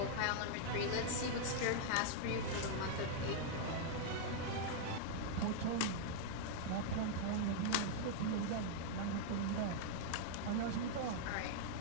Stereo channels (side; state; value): both; different; correlation -0.01